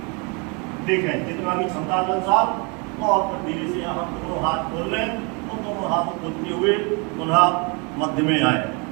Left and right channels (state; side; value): quieter; left; 32.0 dB